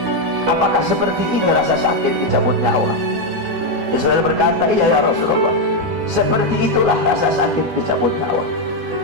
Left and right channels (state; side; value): late; left; 12 ms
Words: apakah seperti ini rasa sakit dicabut nyawa? Israel berkata, iya ya Rasulullah, seperti itulah rasa sakit dicabut nyawa.